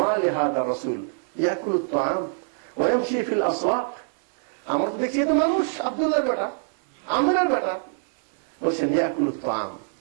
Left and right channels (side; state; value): left; silent; digital silence